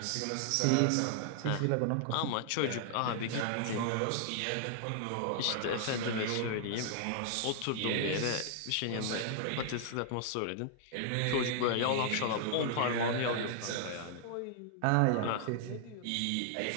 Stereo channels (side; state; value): both; different; correlation -0.01